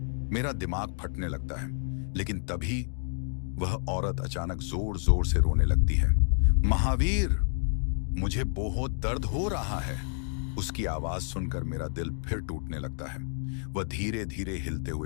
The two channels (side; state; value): right; silent; digital silence